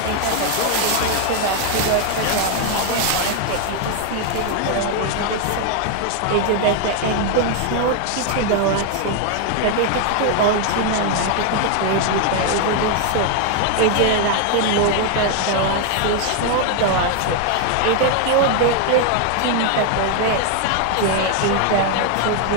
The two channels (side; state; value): both; different; correlation 0.00